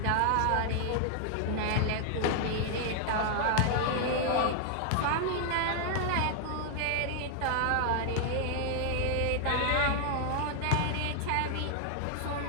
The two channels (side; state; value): both; different; correlation 0.00